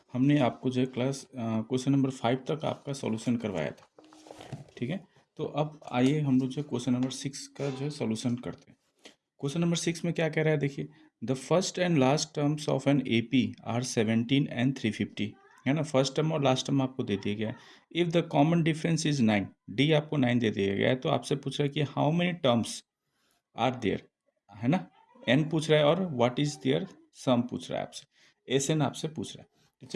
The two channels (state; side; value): identical; both; correlation 1.00